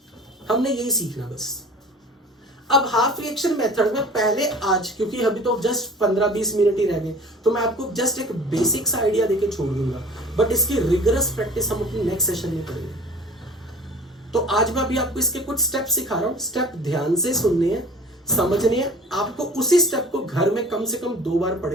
हमने यही सीखना बस। अब हाफ रिएक्शन मेथड में पहले आज, क्योंकि अभी तो जस्ट 15-20 मिनट ही रह गए, तो मैं आपको जस्ट एक बेसिक्स आइडिया देके छोड़ दूंगा, बट इसकी रिगरस प्रैक्टिस हम अपनी नेक्स्ट सेशन में करेंगे। तो आज मैं अभी आपको इसके कुछ स्टेप सिखा रहा हूं, स्टेप ध्यान से सुनने हैं, समझनी है आपको। उसी स्टेप को घर में कम से कम 2 बार पढ़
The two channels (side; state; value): both; normal; correlation 0.44